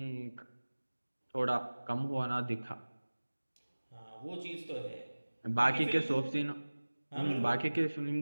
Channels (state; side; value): inverted; both; correlation -1.00